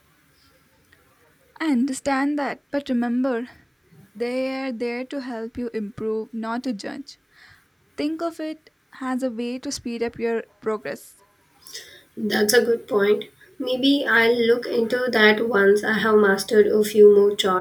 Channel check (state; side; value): identical; both; correlation 1.00